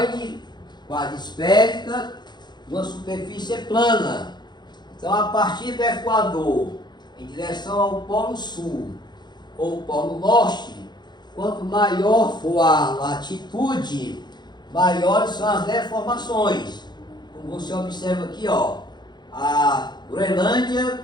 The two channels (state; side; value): late; right; 0.21 ms